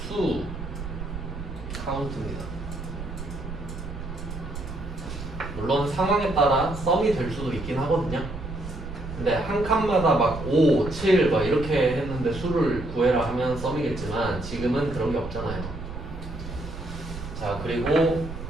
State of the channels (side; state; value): right; noise; rumble, 9 dB below the sound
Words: 수 카운트입니다. 물론 상황에 따라 썸이 될 수도 있긴 하거든요. 근데 한 칸마다 막 5, 7 막 이렇게 했는데 수를 구해라 하면 썸이겠지만 지금은 그런 게 없잖아요. 자, 그리고